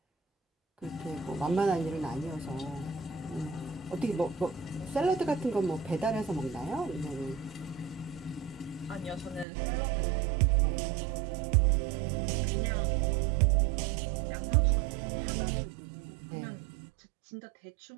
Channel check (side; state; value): left; drops out; at 9.5 s